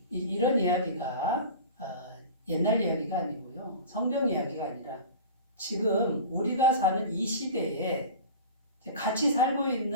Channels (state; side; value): inverted; both; correlation -0.36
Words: 이런 이야기가 옛날 이야기가 아니고요. 성경 이야기가 아니라 지금 우리가 사는 이 시대에 같이 살고